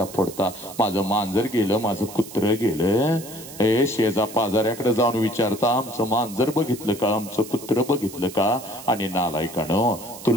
फोडता, माझं मांजर गेलं, माझं कुत्र गेलं. ए शेजा पाजाऱ्याकडे जाऊन विचारता आमचं मांजर बघितलं का, आमचं कुत्र बघितलं का? आणि नालायकानो,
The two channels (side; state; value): right; noise; hiss, 15 dB below the sound